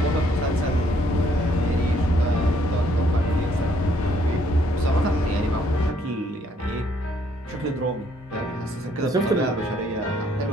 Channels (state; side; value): normal; both; correlation 0.67